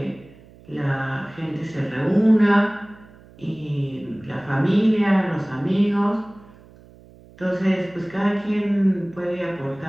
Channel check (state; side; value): noise; right; hum, 24 dB below the sound